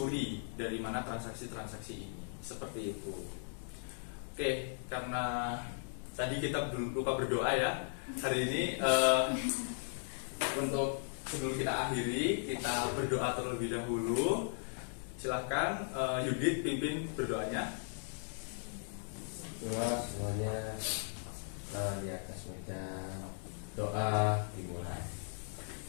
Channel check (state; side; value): silent; right; digital silence